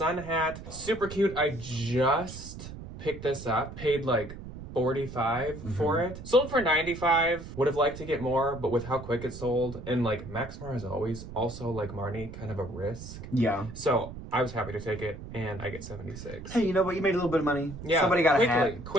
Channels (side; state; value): right; noise; rumble, 12 dB below the sound